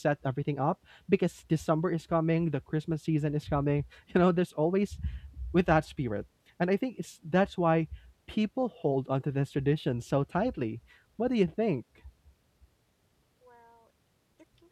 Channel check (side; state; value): both; identical; correlation 1.00